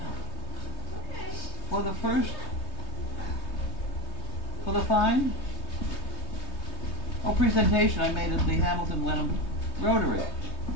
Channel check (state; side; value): late; right; 3.2 ms